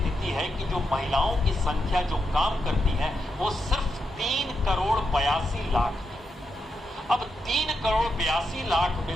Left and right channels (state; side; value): normal; both; correlation 0.85